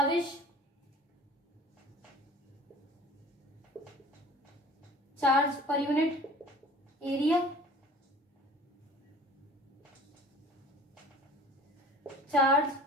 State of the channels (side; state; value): both; normal; correlation 0.45